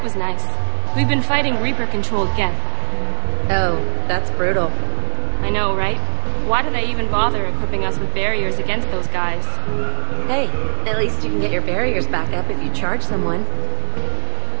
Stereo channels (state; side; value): silent; left; digital silence